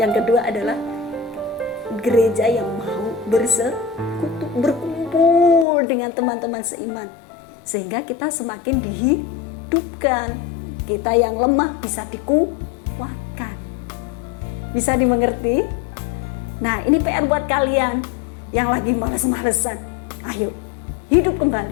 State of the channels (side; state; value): right; drops out; at 5.7 s